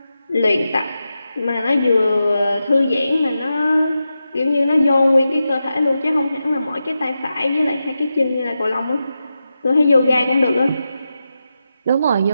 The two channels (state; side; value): inverted; both; correlation -0.90